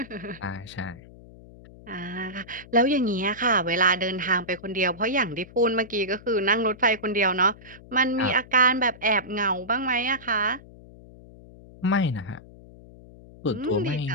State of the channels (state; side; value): noise; left; hum, 20 dB below the sound